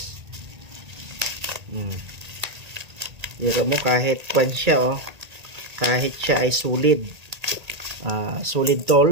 Dito mo kahit kwan siya kahit siya ay solid. Solid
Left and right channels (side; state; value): left; late; 1.8 ms